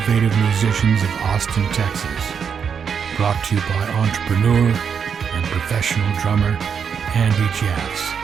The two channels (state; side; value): quieter; left; 6.9 dB